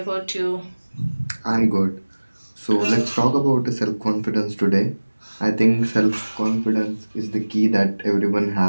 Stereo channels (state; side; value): inverted; both; correlation -1.00